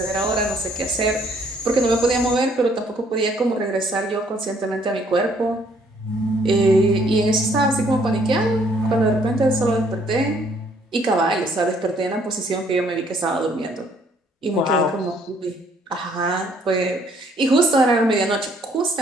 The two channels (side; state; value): both; normal; correlation 0.64